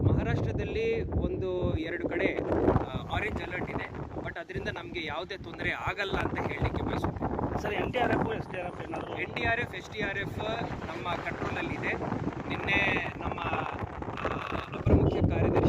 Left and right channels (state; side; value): identical; both; correlation 1.00